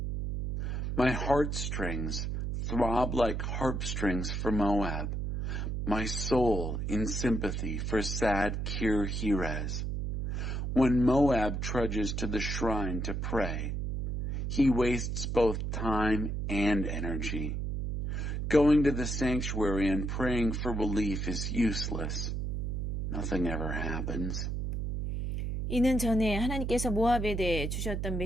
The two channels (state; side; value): noise; right; hum, 2 dB below the sound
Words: My heartstrings throb like harp strings for Moab, my soul in sympathy for sad Kir Heres. When Moab trudges to the shrine to pray, he wastes both time and energy. Going to the sanctuary and praying for relief is useless. Nothing ever happens. 이는 전에 하나님께서 모압에 대해 주셨던